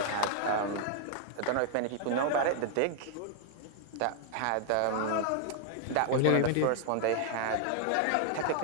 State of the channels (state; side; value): different; both; correlation 0.00